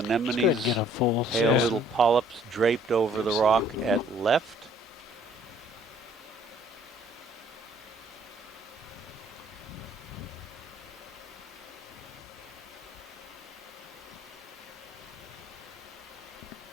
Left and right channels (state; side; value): normal; both; correlation 0.59